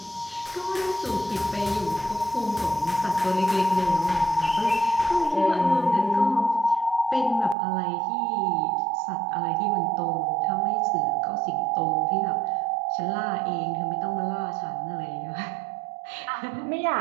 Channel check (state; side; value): drops out; left; at 7.6 s